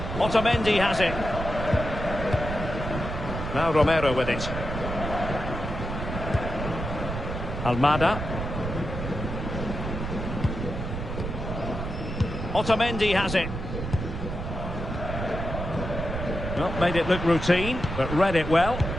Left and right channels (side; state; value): right; noise; rumble, 5 dB below the sound